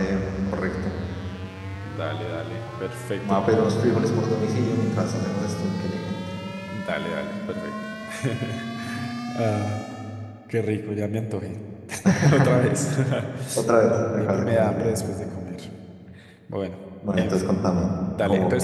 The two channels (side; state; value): both; identical; correlation 1.00